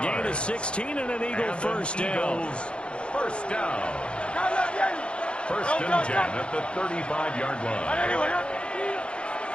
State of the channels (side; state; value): right; late; 0.057 ms